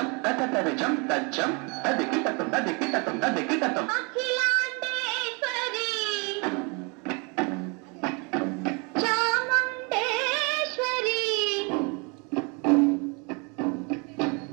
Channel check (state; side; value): quieter; left; 32.0 dB